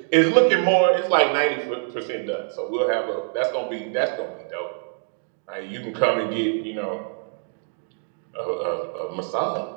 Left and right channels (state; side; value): silent; left; digital silence